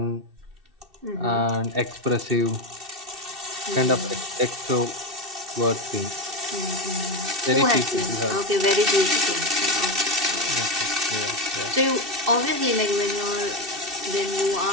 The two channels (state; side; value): late; left; 2.7 ms